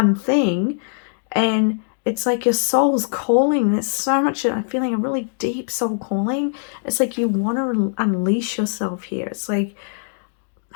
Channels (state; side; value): silent; right; digital silence